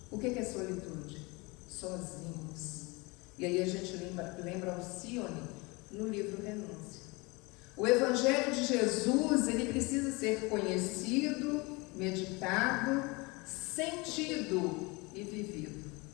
O que é solitude? Sozinhos. E aí a gente lembra Alcione no livro Renúncia. O Evangelho de Jesus, ele precisa ser conhecido, meditado, sentido e vivido.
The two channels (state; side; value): quieter; right; 26.0 dB